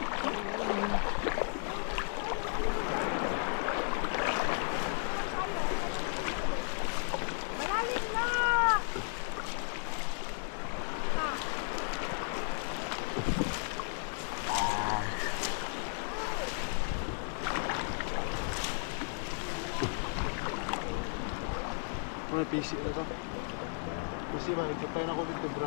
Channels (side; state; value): right; silent; 55 dB below the other